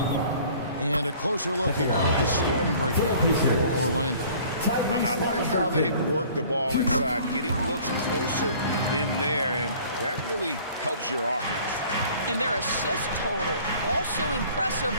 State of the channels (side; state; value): both; inverted; correlation -0.51